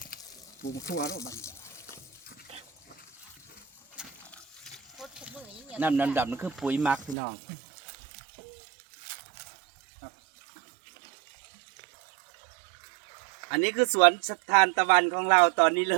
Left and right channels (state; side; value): drops out; left; at 7.2 s